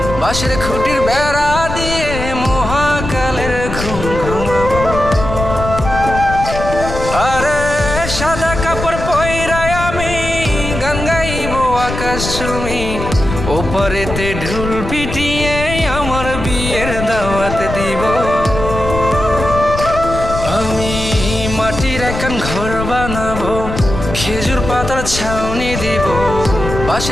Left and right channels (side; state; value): left; noise; rumble, 6 dB below the sound